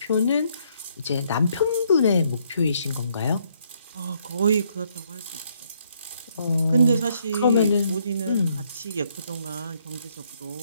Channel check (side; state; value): both; inverted; correlation -0.71